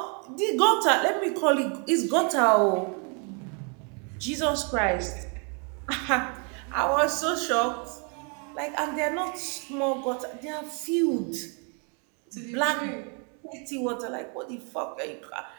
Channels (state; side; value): quieter; left; 36.9 dB